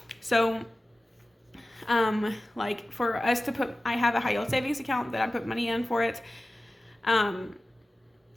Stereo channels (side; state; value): both; normal; correlation 0.96